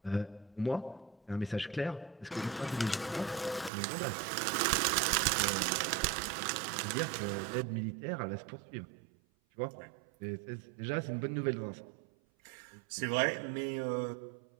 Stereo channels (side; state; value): left; drops out; at 3.7 s